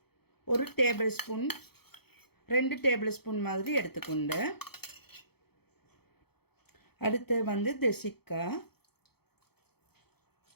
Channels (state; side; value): late; right; 0.96 ms